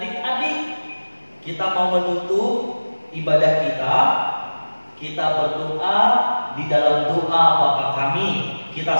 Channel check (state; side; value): inverted; both; correlation -1.00